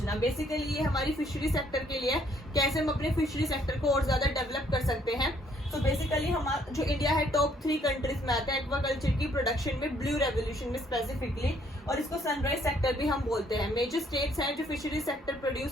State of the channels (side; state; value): both; normal; correlation 0.66